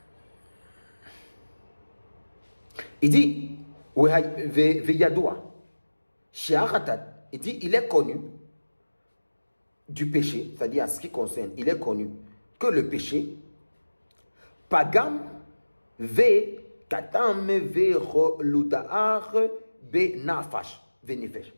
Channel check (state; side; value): inverted; both; correlation -1.00